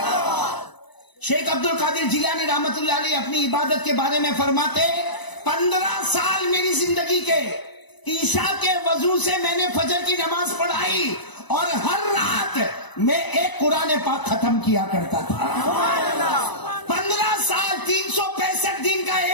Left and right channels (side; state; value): right; late; 1.0 ms